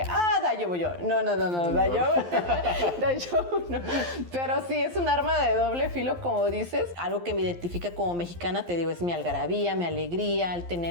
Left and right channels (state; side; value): late; left; 11 ms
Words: daijoubu yo. No, daijoubu no. Pero sí, es un arma de doble filo, como dices. Algo que me identifica como mexicana, te digo, es mi algarabía, mi alegría, el